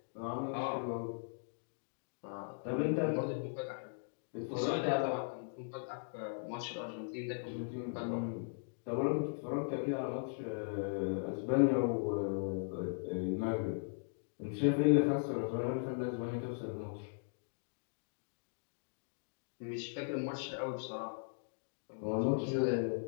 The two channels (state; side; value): silent; right; digital silence